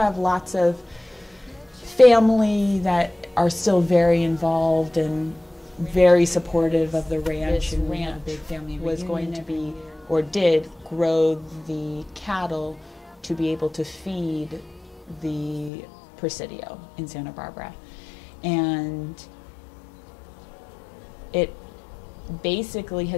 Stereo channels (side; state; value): right; drops out; at 15.7 s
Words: lots of family that are still very involved and very supportive of the ranch. And ranch was going to be, or did, grow the cattle to be able to feed the Presidio in Santa Barbara. And it basically